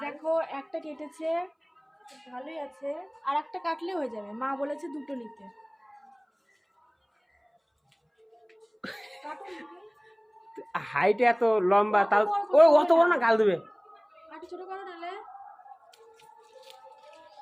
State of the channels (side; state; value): both; identical; correlation 1.00